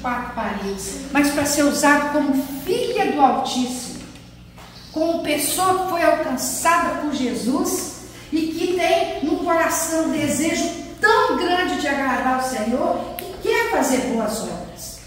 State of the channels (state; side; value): identical; both; correlation 1.00